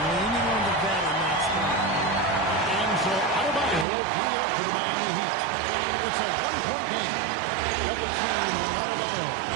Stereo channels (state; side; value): drops out; left; at 3.9 s